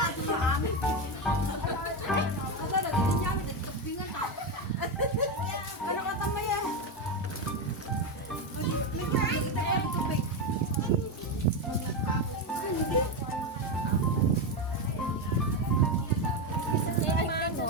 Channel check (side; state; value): both; normal; correlation 0.11